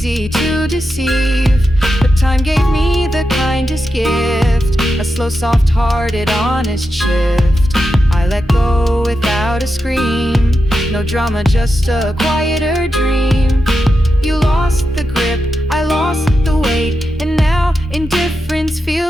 to deceive. But time gave me the kindest gift, a slow, soft-hearted, honest shift. I let go without a scream. No drama, just a quieter dream. You lost the grip, I lost the weight, and now indifference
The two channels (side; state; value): both; normal; correlation 0.88